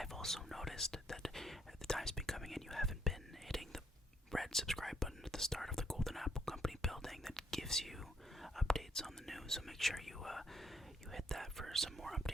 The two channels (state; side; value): normal; both; correlation 0.70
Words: also noticed that the time's been coming in, you haven't been hitting the red subscribe button at the start of the Golden Apple Company building that gives you updates on the news, so make sure you hit that for some more